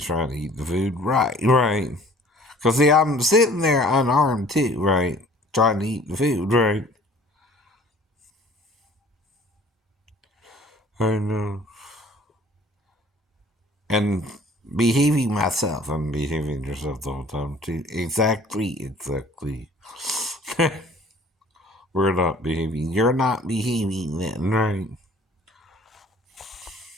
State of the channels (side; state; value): both; normal; correlation 0.52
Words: trying to eat the food. Right. Because, see, I'm sitting there unarmed, too, right? Trying to eat the food, right? I know. And behaving myself. I'm behaving yourself the whole time, too. Exactly. We're not behaving. You're not behaving then, right?